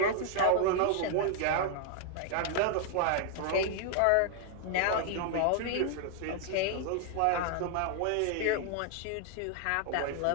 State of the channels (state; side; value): different; both; correlation 0.00